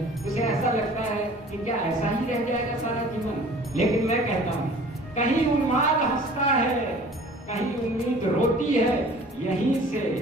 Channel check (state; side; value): normal; both; correlation 0.47